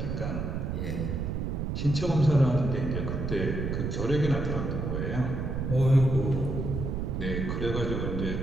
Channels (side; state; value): right; noise; rumble, 2 dB below the sound